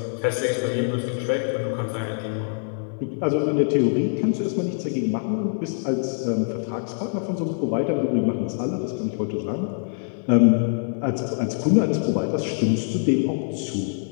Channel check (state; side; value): silent; right; 57 dB below the other